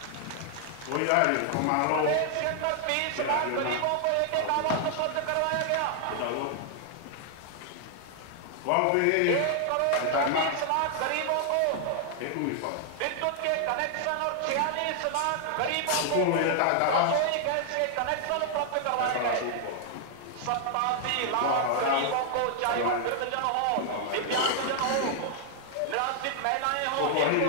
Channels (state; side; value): different; both; correlation 0.00